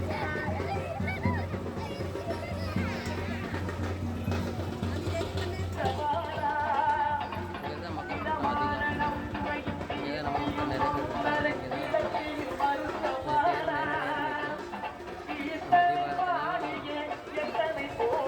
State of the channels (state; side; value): identical; both; correlation 1.00